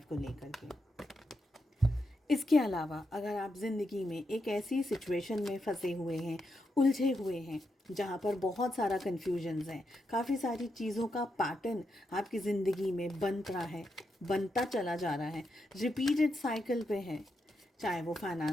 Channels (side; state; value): both; normal; correlation 0.84